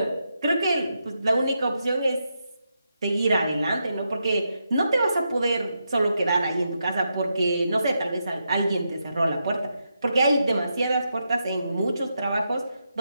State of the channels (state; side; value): inverted; both; correlation -0.84